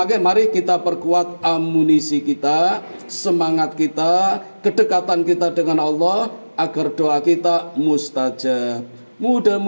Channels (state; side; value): inverted; both; correlation -1.00